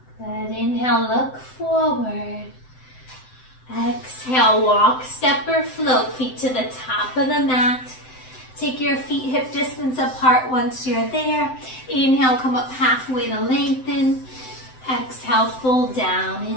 Good. Inhale, look forward. Exhale, walk, step or float, feet to the top of the mat. Take your feet hip distance apart once you're there. Inhale, come up halfway to lengthen. Exhale, fold down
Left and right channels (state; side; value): late; right; 7.8 ms